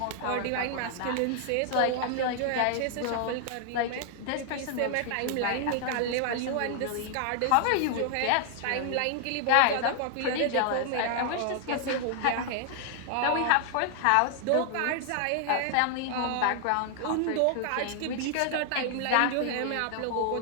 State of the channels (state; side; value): different; both; correlation 0.00